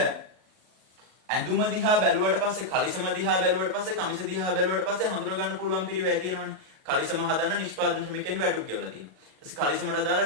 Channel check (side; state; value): left; late; 38 ms